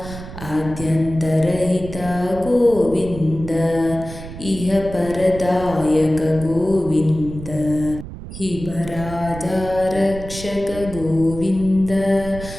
ಆದ್ಯಂತರಹಿತ ಗೋವಿಂದ ಇಹ ಪರದಾಯಕ ಗೋವಿಂದ ಹಿಮರಾಜ ರಕ್ಷಕ ಗೋವಿಂದ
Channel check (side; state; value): right; noise; rumble, 12 dB below the sound